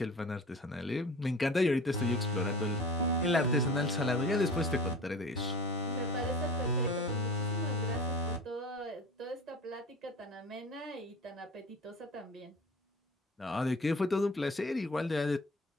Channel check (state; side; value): normal; both; correlation 0.39